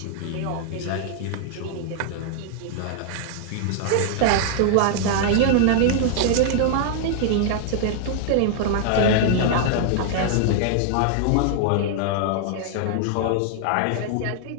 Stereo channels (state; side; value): different; both; correlation 0.00